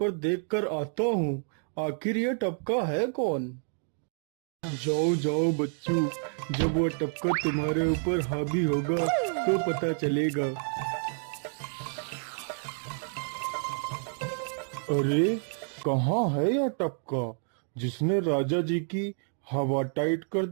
देखकर आता हूँ। आखिर ये टपका है कौन? जाओ बच्चों, जब वो टपका तुम्हारे ऊपर हावी होगा तो पता चलेगा। अरे कहाँ है यह टपका जिसने राजा जी की हवा टाइट कर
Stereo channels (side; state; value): left; silent; 57 dB below the other